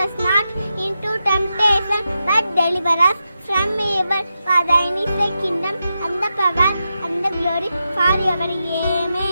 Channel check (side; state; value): both; inverted; correlation -0.88